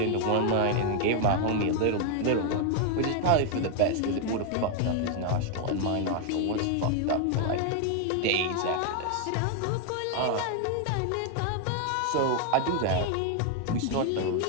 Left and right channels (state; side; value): different; both; correlation 0.00